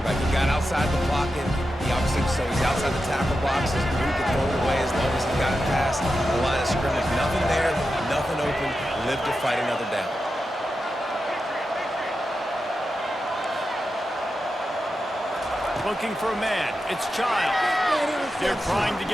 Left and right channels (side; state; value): both; normal; correlation 0.90